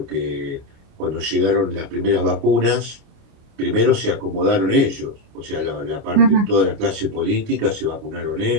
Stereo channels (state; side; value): late; left; 29 ms